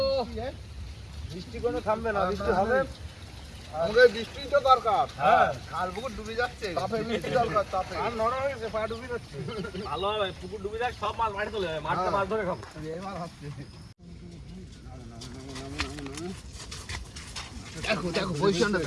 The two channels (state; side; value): identical; both; correlation 1.00